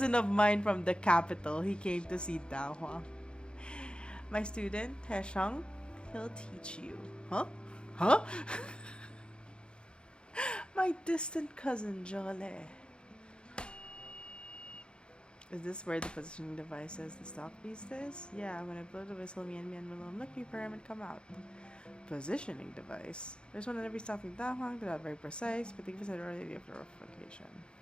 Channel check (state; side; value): late; right; 0.053 ms